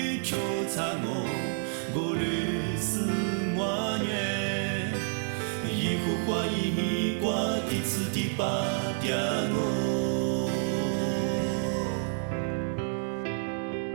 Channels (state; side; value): silent; left; 58 dB below the other